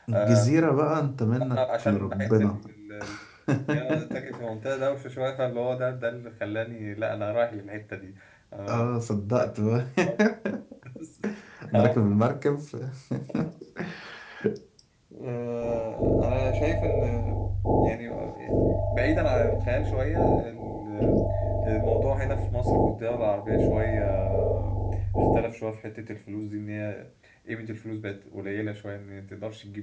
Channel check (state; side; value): identical; both; correlation 1.00